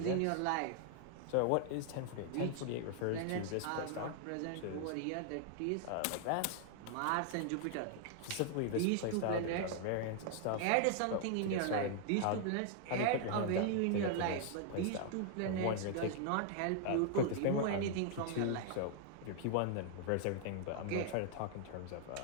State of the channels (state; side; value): different; both; correlation 0.00